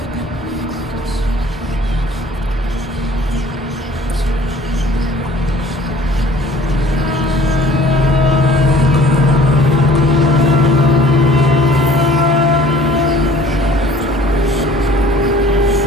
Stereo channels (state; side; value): normal; both; correlation 0.51